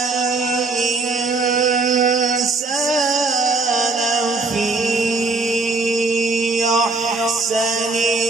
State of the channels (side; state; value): left; quieter; 3.6 dB